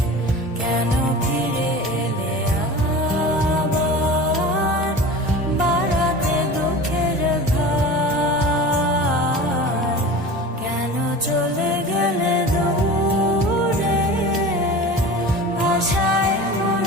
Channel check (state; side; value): normal; both; correlation 0.35